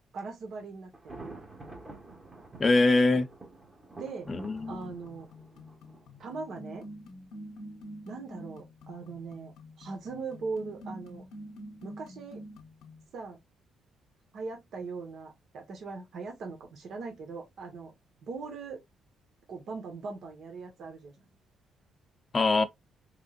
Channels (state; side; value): normal; both; correlation 0.90